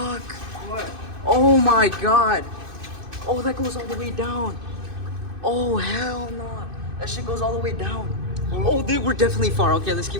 What? Oh my god. Oh, that goes all the way down. Oh, hell no. That shit goes all the way down. Oh, dude, we're definitely far. Okay, let's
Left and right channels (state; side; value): late; left; 2.6 ms